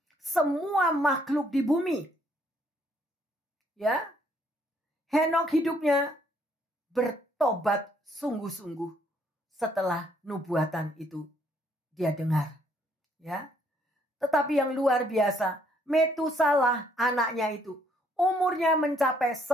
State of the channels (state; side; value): normal; both; correlation 0.68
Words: semua makhluk di bumi. Ya, Henokh hidupnya bertobat sungguh-sungguh setelah nubuatan itu dia dengar. Ya. Tetapi yang luar biasa, Metusalah anaknya itu umurnya mencapai